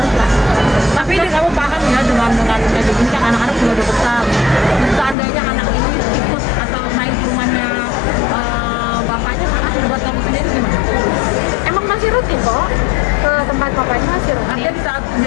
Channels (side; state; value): right; drops out; at 5.2 s